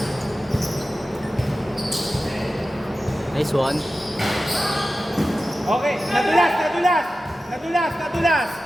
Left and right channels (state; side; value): normal; both; correlation 0.94